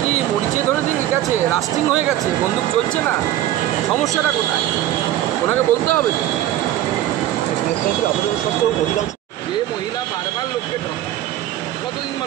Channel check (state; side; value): quieter; left; 13.2 dB